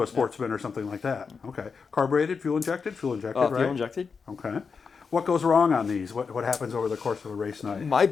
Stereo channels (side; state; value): right; quieter; 5.4 dB